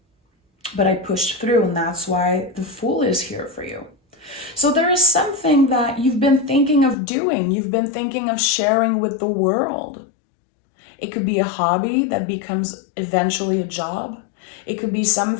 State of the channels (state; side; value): drops out; right; at 7.0 s